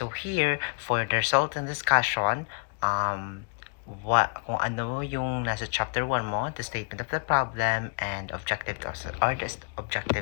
here, for the result and discussion, kung ano yung nasa chapter 1 mo, the statement of the problem and objectives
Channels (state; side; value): quieter; right; 38.1 dB